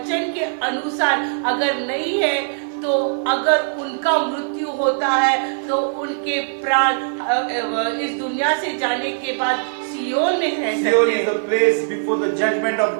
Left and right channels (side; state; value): left; silent; 61 dB below the other